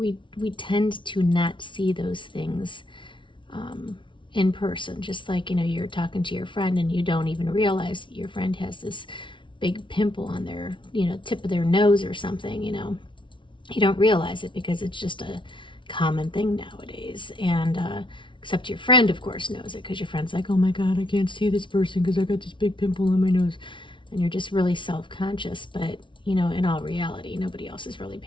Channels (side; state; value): right; late; 0.24 ms